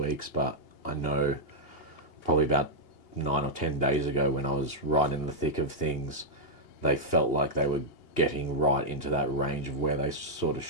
but I know probably about 9 or 10 days ago when I was right in the thick of things, they felt like they were getting right into that range of where they sort of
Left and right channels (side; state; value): right; late; 2.8 ms